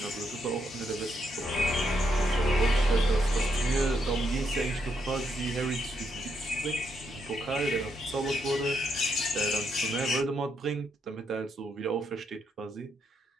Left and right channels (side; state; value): both; normal; correlation 0.78